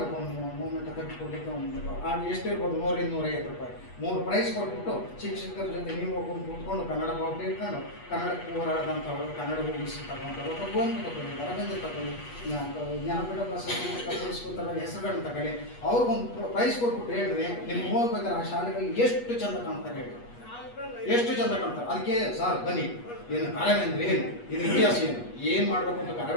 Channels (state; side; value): late; right; 8.3 ms